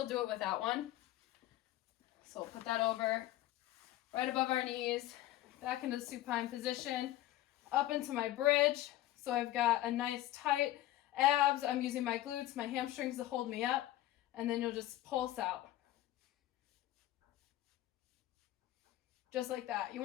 do it without one. So we'll put that over right above our knees, back into the supine position, up into my bridge. So I've got a nice tight abs. I'm using my glutes, my hamstrings to hold me up, and then you'll just pulse out. Just like that. You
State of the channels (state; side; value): quieter; right; 14.7 dB